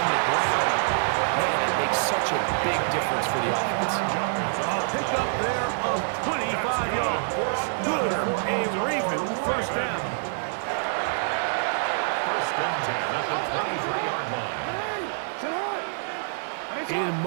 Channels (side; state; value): left; silent; digital silence